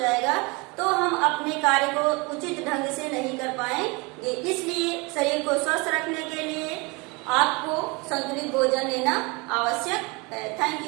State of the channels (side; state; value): left; quieter; 27.4 dB